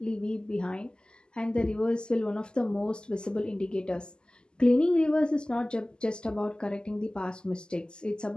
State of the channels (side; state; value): right; late; 0.047 ms